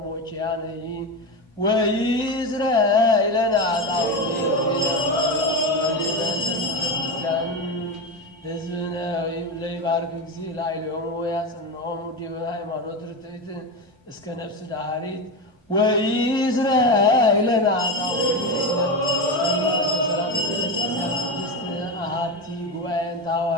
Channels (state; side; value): normal; both; correlation 0.18